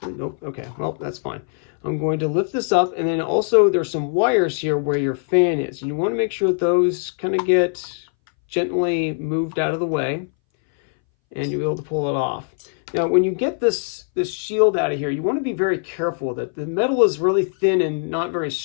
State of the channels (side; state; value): right; silent; 62 dB below the other